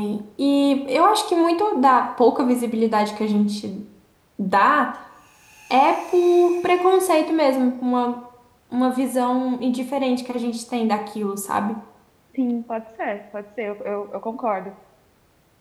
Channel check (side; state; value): both; identical; correlation 1.00